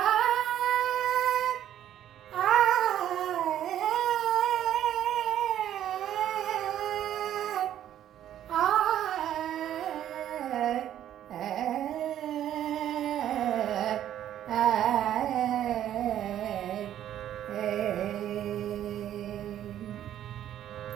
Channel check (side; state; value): left; quieter; 11.3 dB